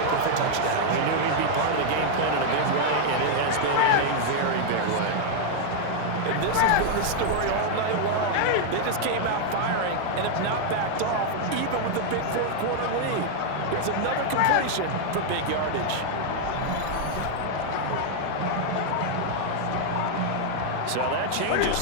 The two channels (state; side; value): different; both; correlation 0.00